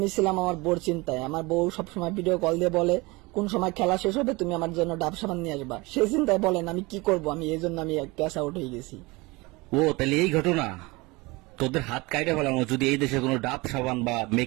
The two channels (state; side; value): quieter; left; 23.9 dB